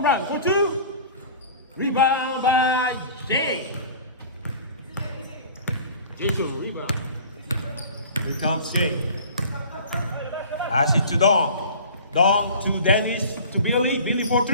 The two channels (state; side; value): inverted; both; correlation -0.43